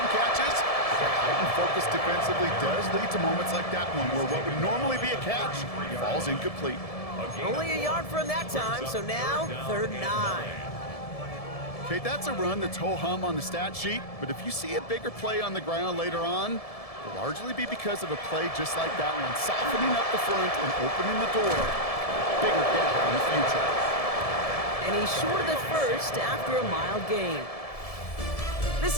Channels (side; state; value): right; late; 1.7 ms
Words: catches. But heightened focus defensively does lead to moments like that one where what would normally be a catch falls incomplete. Only a yard for him that time, so now 3rd and 9. Okay, that's a run that's ho-hum on the stat sheet, but if you see a bigger play on the ground later on, it'll largely be because of a play just like that one, softening up the front and opening the door for a bigger gap in the future. And he's short of the first after a mild gain. This